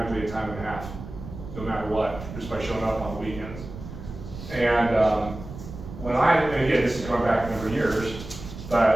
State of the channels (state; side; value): noise; right; rumble, 12 dB below the sound